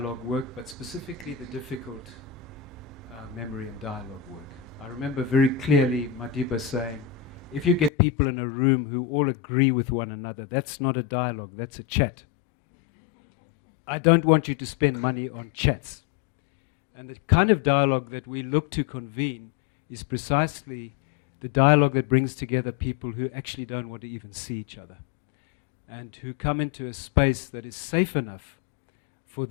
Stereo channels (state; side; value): drops out; right; at 7.9 s